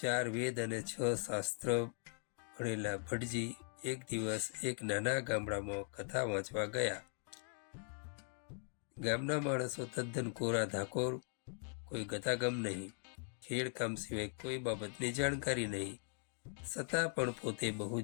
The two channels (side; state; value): right; silent; 51 dB below the other